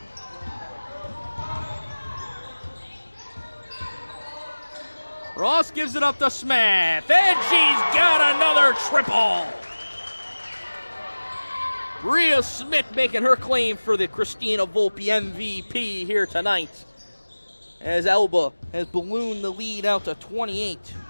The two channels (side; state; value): both; inverted; correlation -1.00